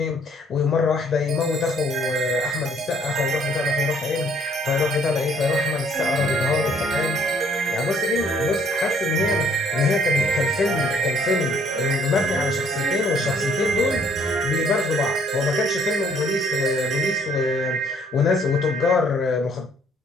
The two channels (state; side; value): normal; both; correlation 0.62